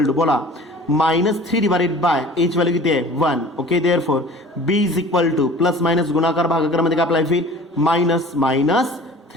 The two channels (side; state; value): both; normal; correlation 0.44